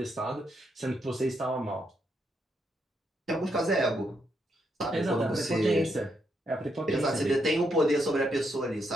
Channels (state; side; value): normal; both; correlation 0.79